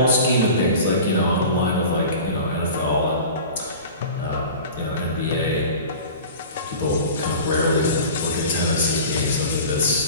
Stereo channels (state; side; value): inverted; both; correlation -0.38